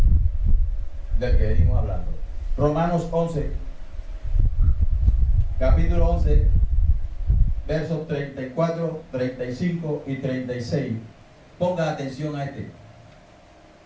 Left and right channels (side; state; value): both; identical; correlation 1.00